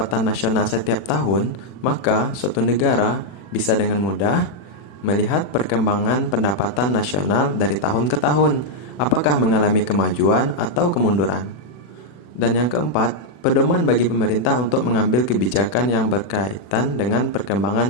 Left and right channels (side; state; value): right; late; 40 ms